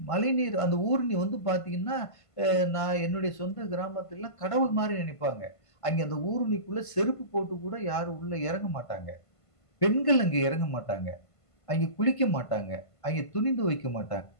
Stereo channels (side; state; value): right; late; 1.5 ms